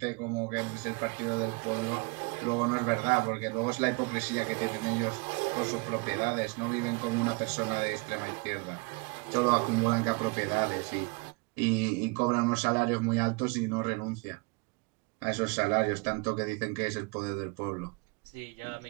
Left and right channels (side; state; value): left; quieter; 30.2 dB